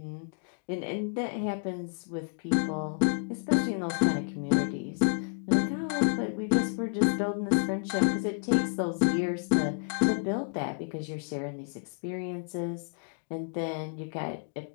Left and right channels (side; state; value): right; silent; digital silence